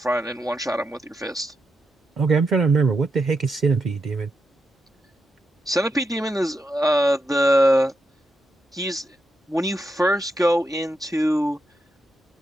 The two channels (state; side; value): normal; both; correlation 0.84